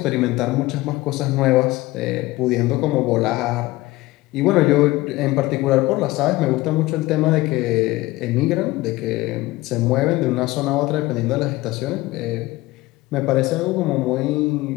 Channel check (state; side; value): quieter; right; 19.3 dB